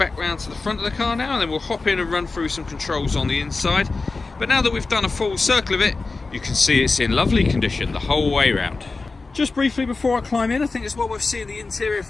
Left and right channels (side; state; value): right; quieter; 3.8 dB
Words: round to the front of the car now, and then we'll hop in and run through some controls on the inside. But now that we've done a full circle of it, you can see it's in lovely condition the whole way around. Just briefly before I climb in, I think it's well worth seeing the interior